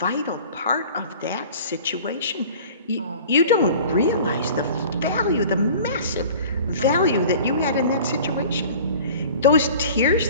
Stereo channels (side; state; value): both; inverted; correlation -0.43